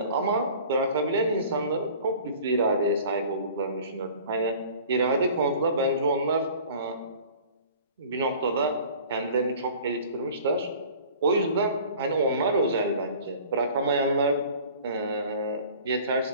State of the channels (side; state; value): both; inverted; correlation -0.46